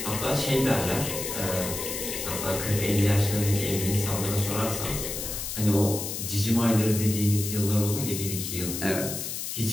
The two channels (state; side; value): noise; left; hiss, 5 dB below the sound